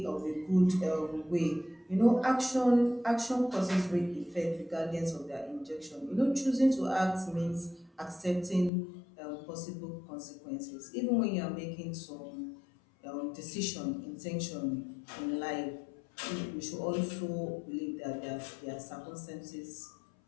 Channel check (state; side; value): drops out; right; at 8.7 s